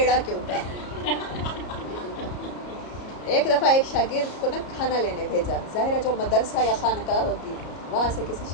क्यों था। एक दफ़ा एक शागिर्द को ना खाना लेने भेजा, ज़ाहिर है जो मदरसा या खानकाह होती, वहाँ से किसी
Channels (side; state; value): right; late; 33 ms